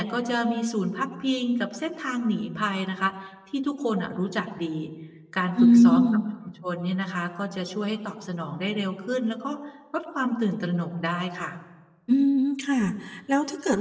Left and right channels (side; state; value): both; identical; correlation 1.00